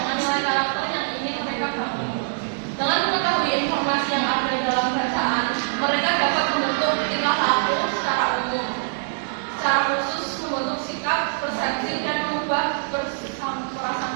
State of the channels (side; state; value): left; silent; digital silence